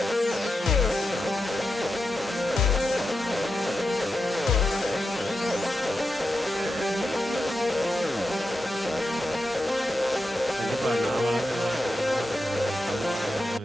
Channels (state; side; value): normal; both; correlation 0.88